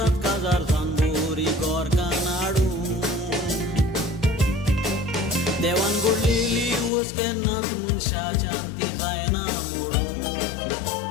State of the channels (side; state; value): right; drops out; at 6.9 s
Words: काजार सांबोरी गोरकां नाडू. देवान घडलेली वस केन्नाच मनशाच्यान ती जायना मोडू.